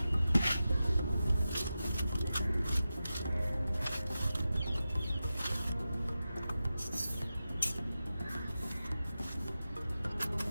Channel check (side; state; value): both; inverted; correlation -0.92